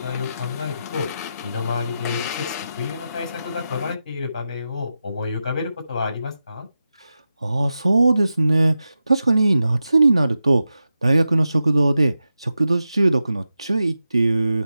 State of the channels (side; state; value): both; inverted; correlation -0.91